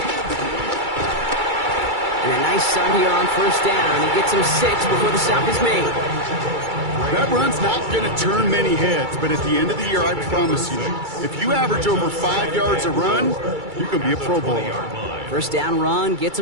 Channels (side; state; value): left; late; 2.3 ms